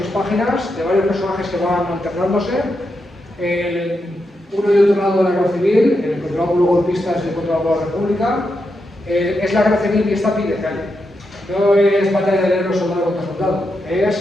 páginas, de varios personajes que van alternándose. Uno y otro lado de la Guerra Civil, el controlado por los golpistas y el controlado por la República. Es la Guerra Civil y está a pie de calle. No es batalla de héroes soldado contra soldado.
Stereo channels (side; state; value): both; normal; correlation 0.85